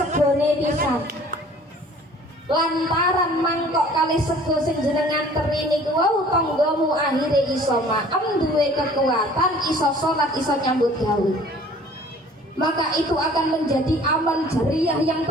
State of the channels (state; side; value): normal; both; correlation 0.51